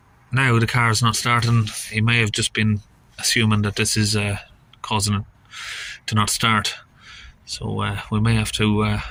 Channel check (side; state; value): both; identical; correlation 1.00